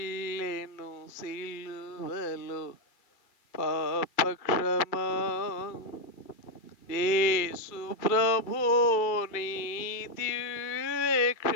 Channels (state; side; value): late; right; 2.3 ms